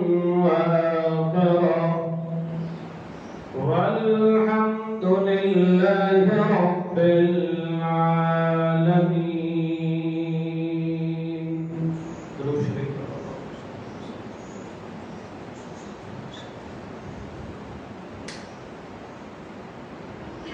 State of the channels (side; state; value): both; identical; correlation 1.00